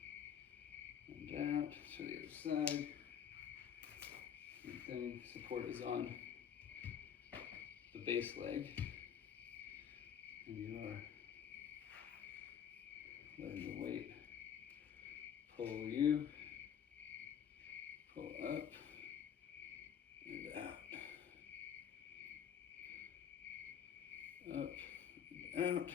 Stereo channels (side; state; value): right; quieter; 8.4 dB